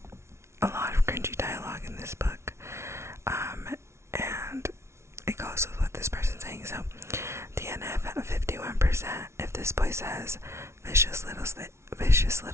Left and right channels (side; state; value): left; late; 0.13 ms